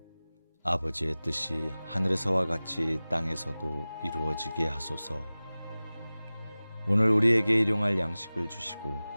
아버지의 뜻이 하늘에서와 같이 땅에서도 이루어지게 하소서. 오늘 우리에게 일용할 양식을 주시고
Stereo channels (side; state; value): both; inverted; correlation -0.98